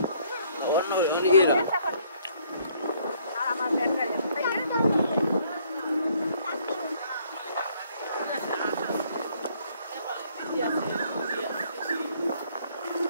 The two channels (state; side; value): inverted; both; correlation -0.64